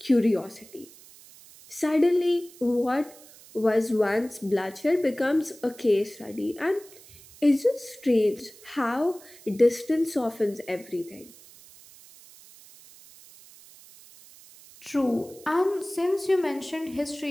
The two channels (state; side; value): noise; right; hiss, 22 dB below the sound